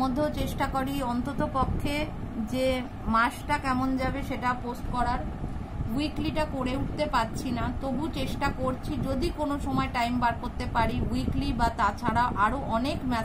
মধ্যেও চেষ্টা করি অন্তত পক্ষে যে মাসটা কেমন যাবে সেটা পোস্ট করার। উইকলিটা করে উঠতে পারছি না, তবু চেষ্টা করছি যদি কোনো সময় টাইম বার করতে পারি উইকলি বা তাছাড়া আরও অনেক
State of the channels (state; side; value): identical; both; correlation 1.00